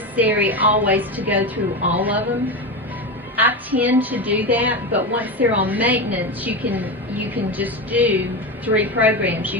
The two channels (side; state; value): both; normal; correlation 0.19